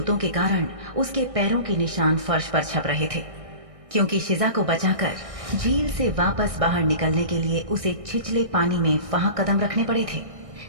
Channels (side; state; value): left; late; 1.6 ms